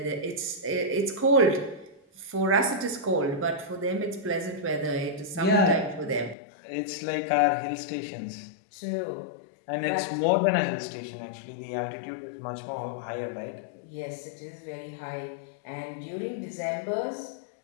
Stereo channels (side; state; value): right; drops out; at 6.4 s